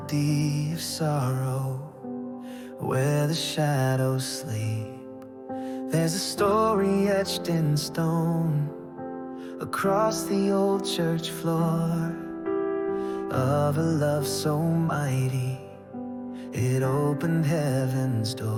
of sorrow, where the shadows sleep. There's a story etched in stone across the old church floor, of a love so mighty it opened heaven's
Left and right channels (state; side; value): identical; both; correlation 1.00